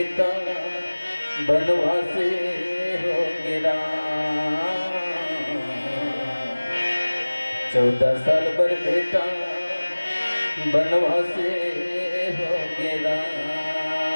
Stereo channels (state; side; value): inverted; both; correlation -1.00